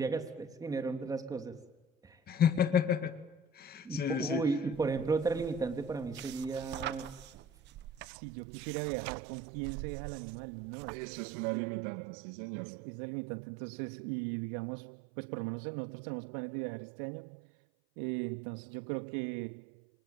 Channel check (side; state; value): left; drops out; at 8.1 s